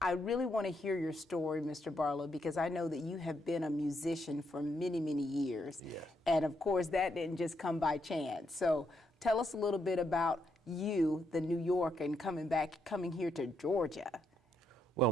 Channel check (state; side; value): normal; both; correlation 0.78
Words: I really want to hear your story, Mr. Barlow, because I know that you have been a musician for many, many years. Yeah. And of course, that didn't just come by chance. So tell us a little bit about you, the New Yorker, coming here to Georgia. Well,